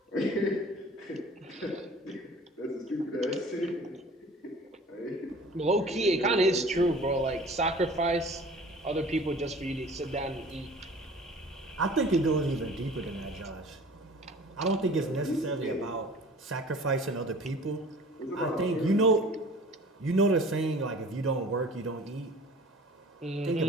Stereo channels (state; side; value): normal; both; correlation 0.46